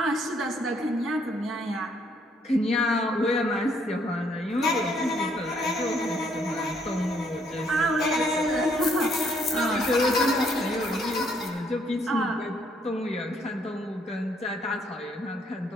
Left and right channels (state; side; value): normal; both; correlation 0.68